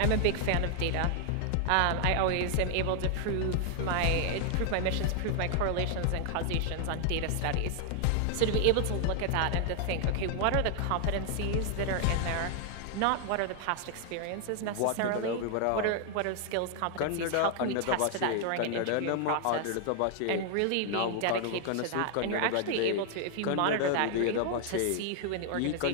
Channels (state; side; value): different; both; correlation 0.00